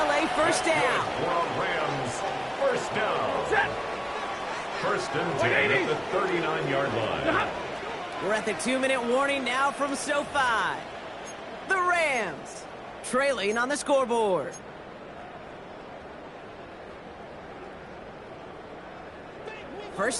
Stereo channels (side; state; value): both; identical; correlation 1.00